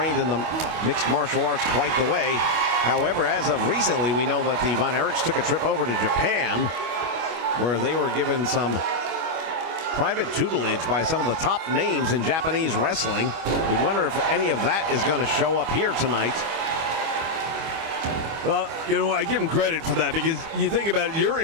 in the mixed martial arts quite the way. However, as of recently, we know that the Von Erichs took a trip over to Japan, where they were given some private tutelage by some of the top names in Japanese wrestling. We wonder if any of that is going to show up here tonight. Well, you know, I give them credit for that, because you think about it, you're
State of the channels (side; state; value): left; late; 25 ms